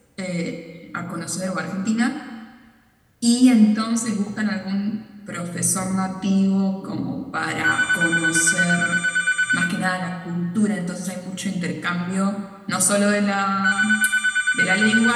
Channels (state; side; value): identical; both; correlation 1.00